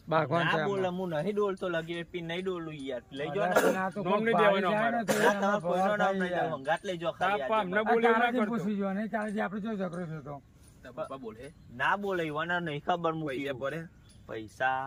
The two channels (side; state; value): both; identical; correlation 1.00